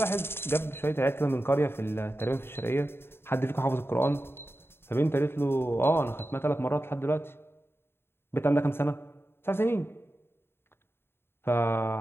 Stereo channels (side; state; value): right; late; 0.11 ms